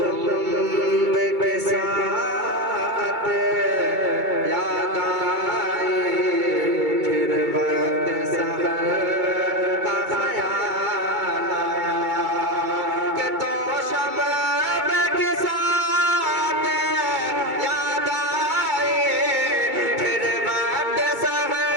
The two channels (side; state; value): left; late; 2.2 ms